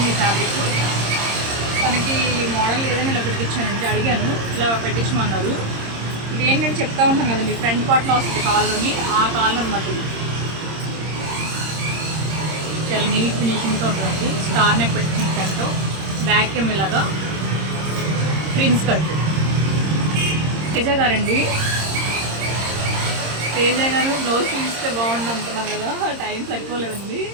ఫ్యాబ్రిక్. తనకి మోడల్ ఏదైనా ఇలా పెట్టించానండి, అడిగాను ఇలా పెట్టించమన్నారు. ఇది ఏంటంటే చెప్తా ఉంటాను కదండి, ఫ్రంట్ పార్ట్లో వస్తుంది కాల్లోని, ఆ కాల్ అనమాట. ఇది చాలా నీట్ ఫినిషింగ్తో ఉంటుంది. స్టార్ నెక్ పెట్టించిన ఫ్రంట్, బ్యాక్ ఏమో ఇలాగా ప్రిన్స్ కట్. తేజ గారండి, తేజ గారు బ్లౌజ్ చూస్తే బాగుండు అంటున్నారు కదా, టైం సరిపోలేదండి.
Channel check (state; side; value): late; left; 26 ms